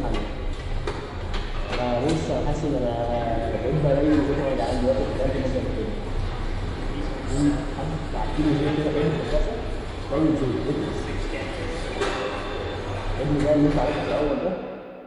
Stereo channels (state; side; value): identical; both; correlation 1.00